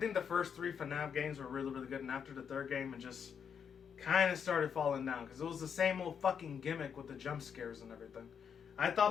the first 3 FNAF games were really, really good, and after the 3rd game, it just kind of started falling down, because it was the same old fucking gimmick with the jump scares and everything. I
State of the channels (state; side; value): quieter; right; 7.2 dB